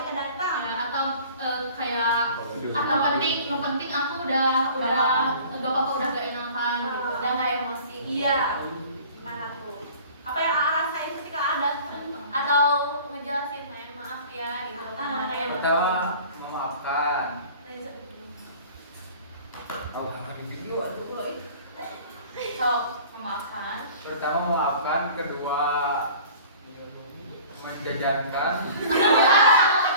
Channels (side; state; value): both; inverted; correlation -0.46